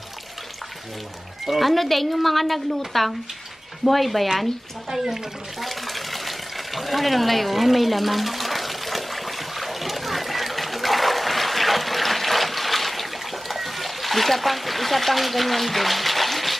Ano din yung mga naglutang? Buhay ba yan? Ano lang layo? Ay, may laman. Isa pang ganyan din.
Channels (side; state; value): both; normal; correlation 0.98